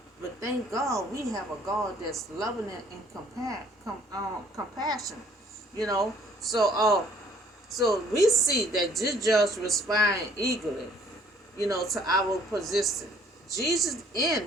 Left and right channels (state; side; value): normal; both; correlation 0.59